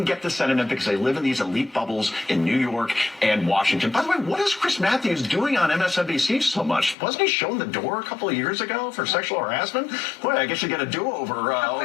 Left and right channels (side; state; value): right; drops out; at 7.0 s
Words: get the Senate in because they live in these elite bubbles in New York and Washington. By the way, what is Chris Matthews doing on MSNBC so much? Wasn't he shown the door a couple of years ago for sexual harassment? Boy, I guess you get a do-over